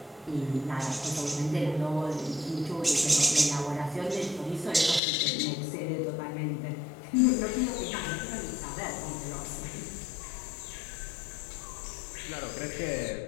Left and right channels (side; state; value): right; drops out; at 5.0 s